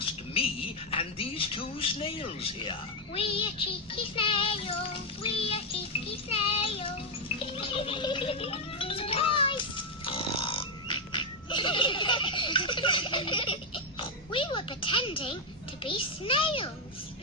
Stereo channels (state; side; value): normal; both; correlation 0.04